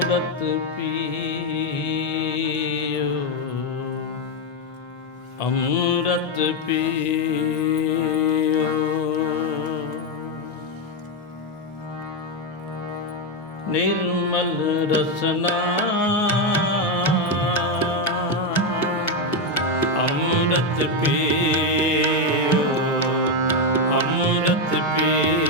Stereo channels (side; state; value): both; normal; correlation 0.06